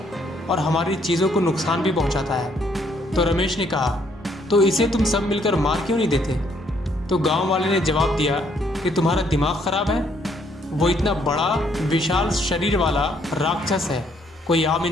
और हमारी चीज़ों को नुकसान भी पहुंचाता है। तो रमेश ने कहा, तो इसे तुम सब मिलकर मार क्यों नहीं देते? तो गांव वाले ने जवाब दिया कि तुम्हारा दिमाग खराब है। वो इतना बड़ा विशाल शरीर वाला राक्षस है, कोई आम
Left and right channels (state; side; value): normal; both; correlation 0.68